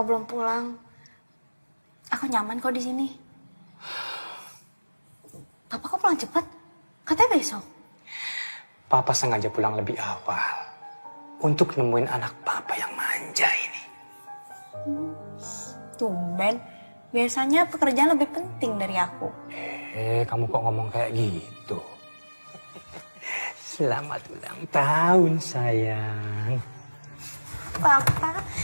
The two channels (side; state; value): both; inverted; correlation -1.00